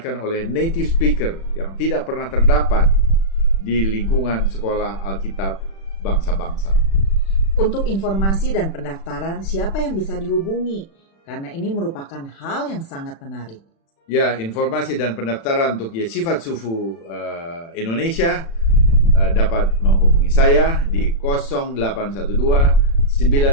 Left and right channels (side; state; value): right; late; 36 ms